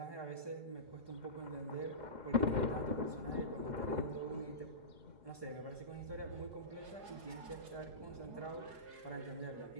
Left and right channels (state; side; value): late; left; 4.8 ms